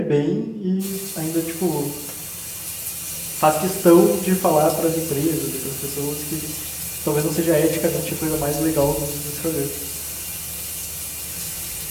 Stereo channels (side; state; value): both; identical; correlation 1.00